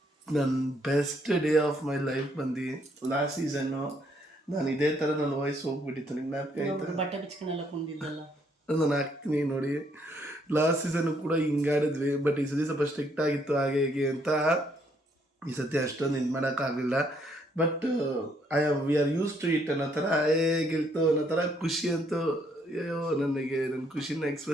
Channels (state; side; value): normal; both; correlation 0.70